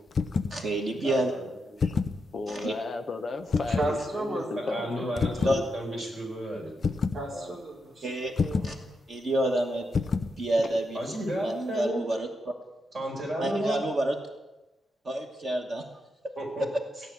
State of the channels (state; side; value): normal; both; correlation 0.83